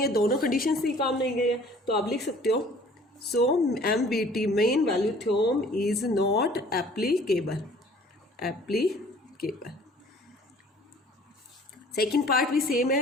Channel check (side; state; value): both; normal; correlation 0.52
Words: है, दोनों कंडीशन से ही काम नहीं गए हैं। तो आप लिख सकते हो सो MVT main value theorem is not applicable. Second part भी सेम